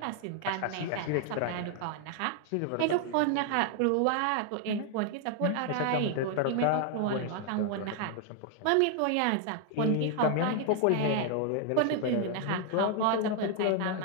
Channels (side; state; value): both; different; correlation 0.00